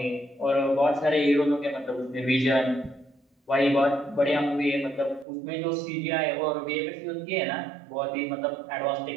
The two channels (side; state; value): left; drops out; at 5.2 s